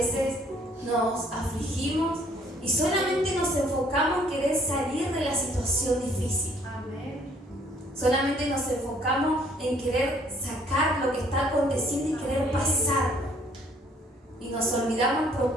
nos afligimos y solamente nos enfocamos en querer salir de la situación difícil. Amén. Solamente nos enfocamos en querer sacar lo que está aconteciendo y querer pasarlo. Y nos olvidamos el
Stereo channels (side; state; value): both; normal; correlation 0.62